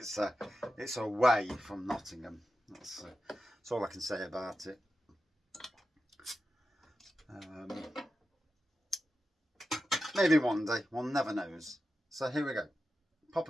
away from Nottingham. That's all I can say about it. Maybe one day. One never knows. So here we go. Pop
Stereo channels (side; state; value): both; normal; correlation 0.91